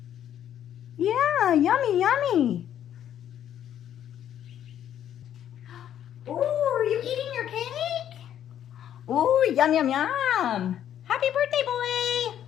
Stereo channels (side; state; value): right; quieter; 10.4 dB